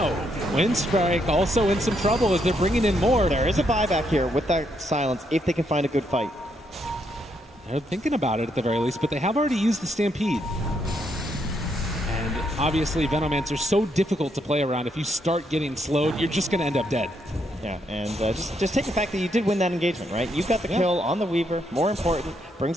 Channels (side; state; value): both; normal; correlation 0.76